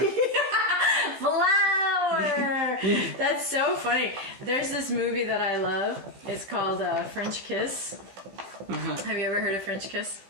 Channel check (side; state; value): left; late; 15 ms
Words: Flower! That's so funny. There's this movie that I love. It's called French Kiss. Have you ever heard of French Kiss?